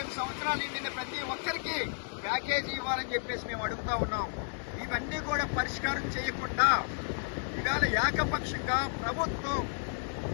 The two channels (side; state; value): right; silent; digital silence